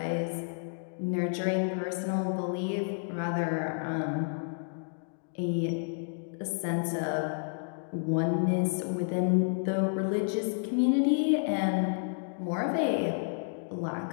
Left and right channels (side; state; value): right; silent; digital silence